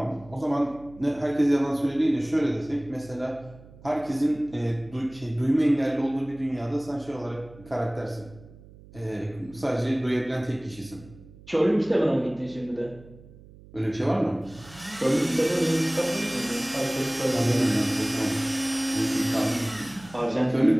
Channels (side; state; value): right; noise; hum, 21 dB below the sound